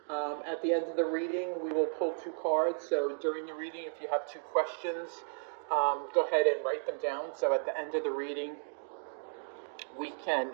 At the end of the reading, we will pull two cards. So during the reading, if you have two questions, go ahead and write them down. So at the end of the reading, we can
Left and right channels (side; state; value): left; silent; digital silence